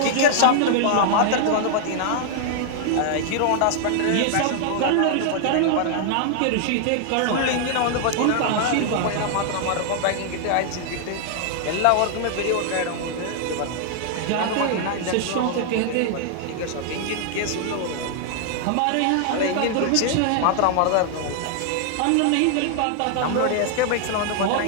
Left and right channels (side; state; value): both; different; correlation 0.00